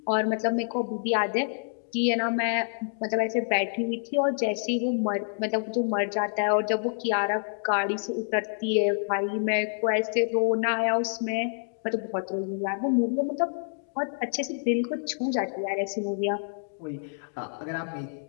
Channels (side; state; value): right; silent; digital silence